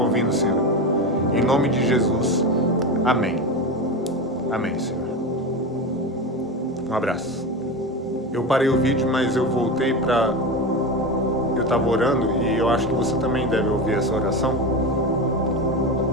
ouvindo, Senhor. Em nome de Jesus, amém. Amém, Senhor. Um abraço. Eu parei o vídeo, mas eu voltei para... Eu estava orando e eu acho que você também deve ouvir essa oração.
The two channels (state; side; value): normal; both; correlation 0.21